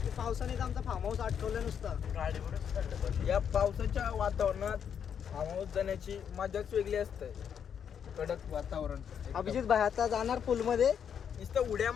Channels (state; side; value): quieter; right; 8.0 dB